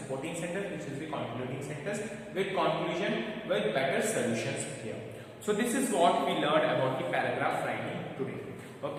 sentence, which is the concluding sentence, with conclusion, with better solutions here. So this is what we learned about the paragraph writing today.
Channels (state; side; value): identical; both; correlation 1.00